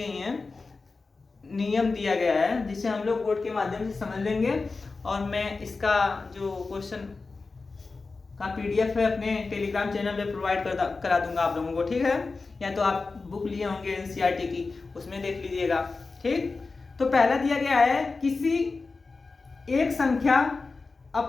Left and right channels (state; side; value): quieter; right; 4.0 dB